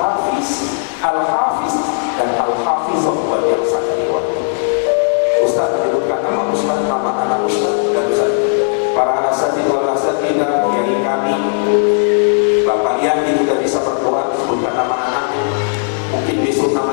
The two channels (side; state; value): right; silent; digital silence